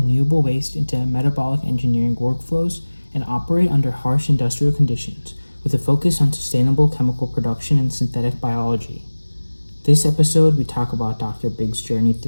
waste into metabolic engineering workflows and operate under harsh industrial conditions, with a focus on sustainable chemical production and synthetic biology. This episode, we talk about Dr. Biggs' journey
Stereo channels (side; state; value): both; inverted; correlation -1.00